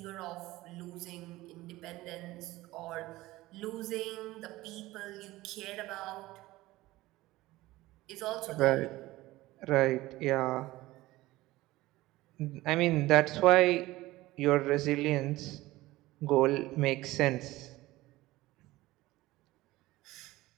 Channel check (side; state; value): left; quieter; 18.1 dB